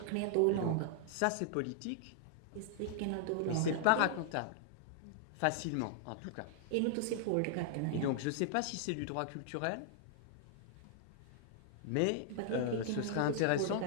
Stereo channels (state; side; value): different; both; correlation -0.01